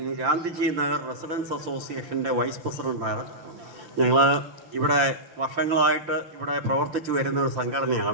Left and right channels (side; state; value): left; late; 5.9 ms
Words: ഗാന്ധിജി നഗർ റെസിഡൻസ് അസോസിയേഷൻ്റെ വൈസ് പ്രസിഡൻ്റാണ്. ഞങ്ങൾ ഇവിടെ വർഷങ്ങളായിട്ട് ഇവിടെ പ്രവർത്തിച്ചു വരുന്ന ഒരു